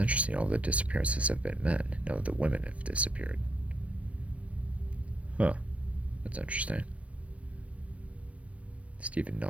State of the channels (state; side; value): late; left; 0.064 ms